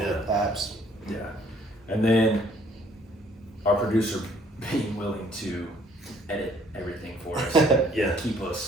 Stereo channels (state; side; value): normal; both; correlation 0.61